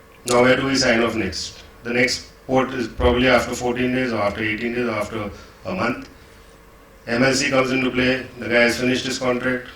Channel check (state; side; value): identical; both; correlation 1.00